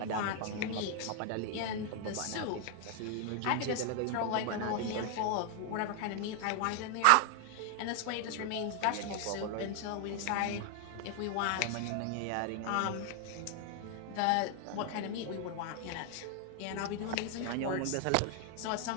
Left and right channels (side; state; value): both; different; correlation 0.00